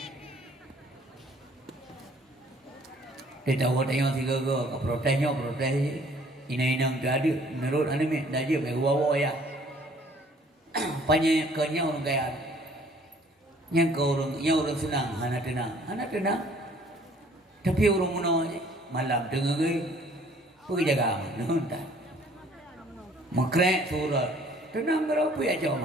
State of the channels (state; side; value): normal; both; correlation 0.58